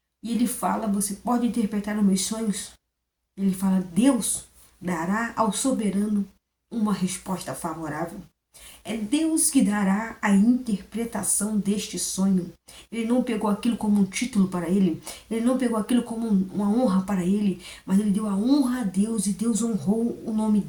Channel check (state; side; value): identical; both; correlation 1.00